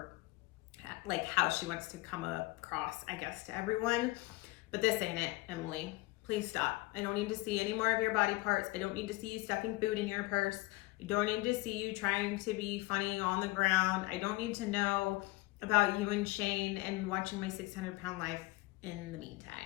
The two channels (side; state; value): right; quieter; 20.7 dB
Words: like, how she wants to come across, I guess, to everyone. But this ain't it, Emily. Please stop. I don't need to see any more of your body parts. I don't need to see you stuffing food in your purse. I don't need to see you trying to be funny on the ground. I don't need to know about you and Shane and watching my 600-pound life in the